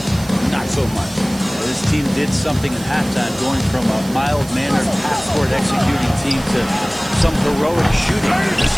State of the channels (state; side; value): noise; right; hiss, 18 dB below the sound